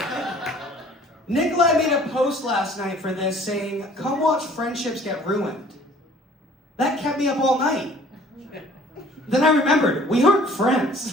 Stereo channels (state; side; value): normal; both; correlation 0.53